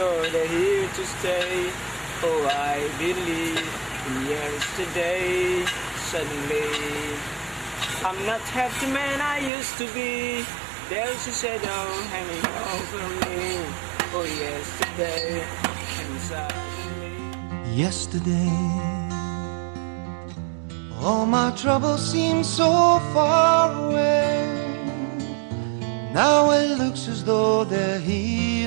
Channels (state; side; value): drops out; left; at 9.5 s